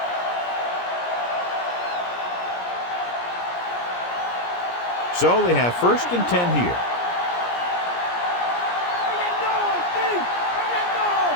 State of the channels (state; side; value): late; right; 17 ms